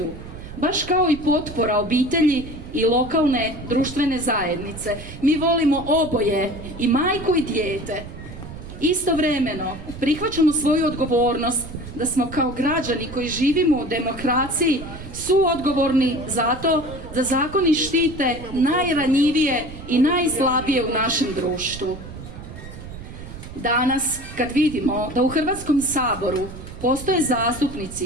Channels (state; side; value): noise; right; rumble, 13 dB below the sound